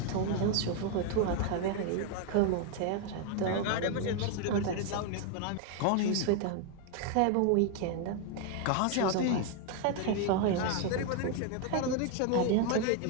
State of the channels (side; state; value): both; different; correlation 0.01